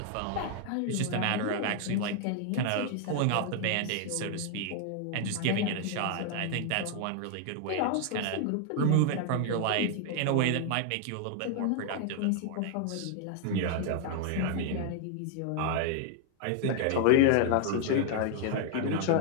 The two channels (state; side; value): different; both; correlation 0.00